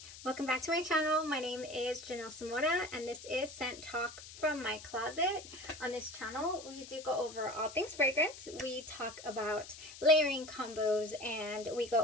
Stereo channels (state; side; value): noise; left; hiss, 15 dB below the sound